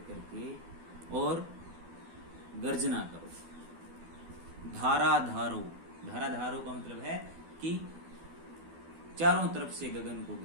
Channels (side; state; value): left; late; 12 ms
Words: करके और गर्जना करो। धारा धारो। धारा धारो का मतलब है कि चारों तरफ से गगन को